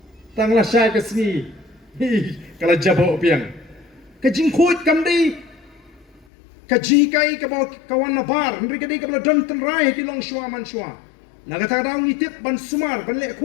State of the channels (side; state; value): right; drops out; at 6.2 s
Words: tang la syai ka singi, kalau jabo piang, kejing coach kamdei, kajikai ka bawa kawan nabar, mereka dei ka bela don tenrai ki long shua man shua, nak kata daun itip ban sumar ban lek